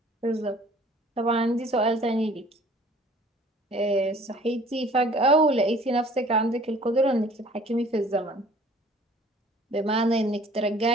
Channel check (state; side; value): normal; both; correlation 0.53